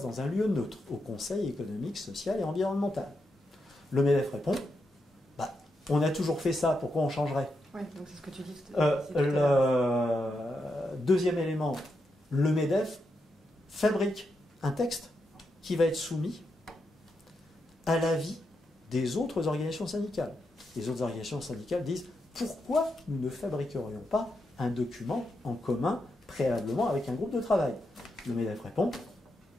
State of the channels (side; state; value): both; normal; correlation 0.84